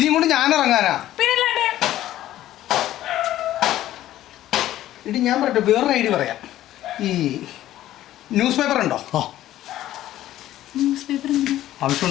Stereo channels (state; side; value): quieter; right; 13.7 dB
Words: കൊണ്ട് ഞാൻ ഇറങ്ങാനാ? പിന്നല്ലാണ്ട്. ഇടി ഞാൻ പറയട്ടെ, വേറൊരു ഐഡിയ പറയാം. ഈ ന്യൂസ് പേപ്പർ ഉണ്ടോ? ന്യൂസ് പേപ്പർ